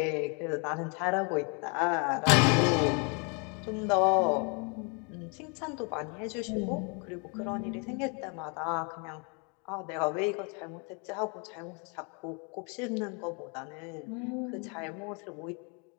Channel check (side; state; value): right; quieter; 34.7 dB